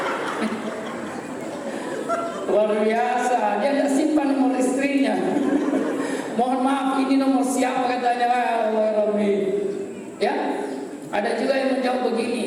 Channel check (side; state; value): both; identical; correlation 1.00